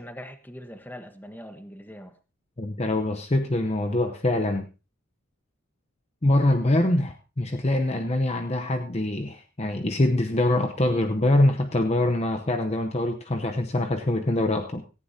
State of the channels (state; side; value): normal; both; correlation 0.76